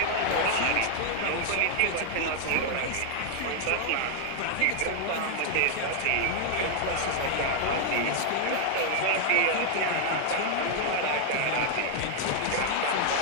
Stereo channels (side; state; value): both; different; correlation 0.00